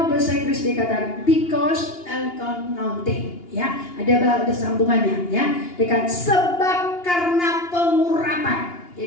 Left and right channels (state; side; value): late; right; 2.8 ms